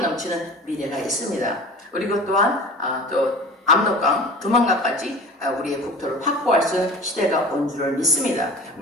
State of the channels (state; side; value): normal; both; correlation 0.39